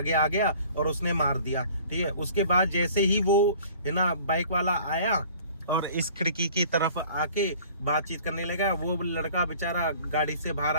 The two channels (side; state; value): both; inverted; correlation -0.49